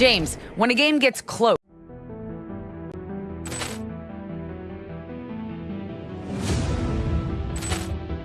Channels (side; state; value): both; identical; correlation 1.00